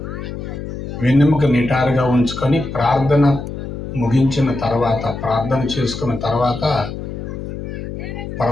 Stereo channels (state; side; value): noise; left; hum, 7 dB below the sound